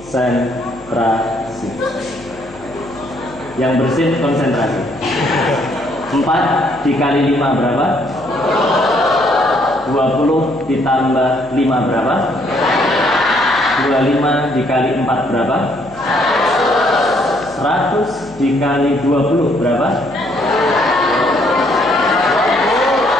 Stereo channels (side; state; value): left; noise; hum, 22 dB below the sound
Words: Yang bersih konsentrasi. 4 dikali 5 berapa? 20 ditambah 5 berapa? 25 dikali 4 berapa? 100 dikali 20 berapa?